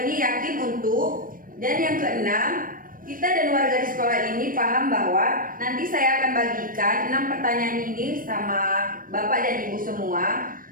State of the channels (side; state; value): left; late; 0.40 ms